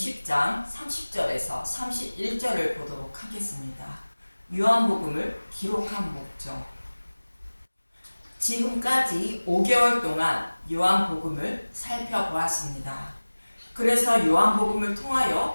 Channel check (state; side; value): inverted; both; correlation -1.00